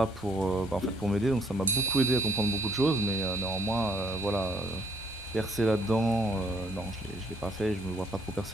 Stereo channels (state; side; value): normal; both; correlation 0.66